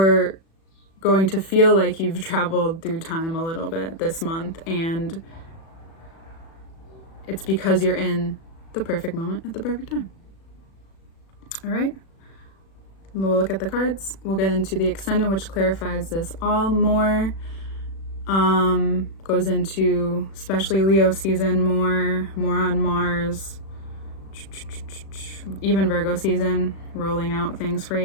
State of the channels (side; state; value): right; late; 36 ms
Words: going to feel like you've traveled through time a little bit this month, and it's because you're in the perfect moment at the perfect time. All right, we'll look at the cards. We'll get into the extended, which clarifies this all more. Goes into especially Leo season more on Mars, even Virgo season, rolling out things for